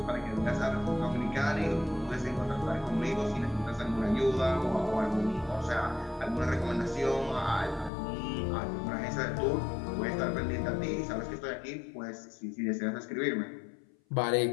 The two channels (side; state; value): right; drops out; at 7.9 s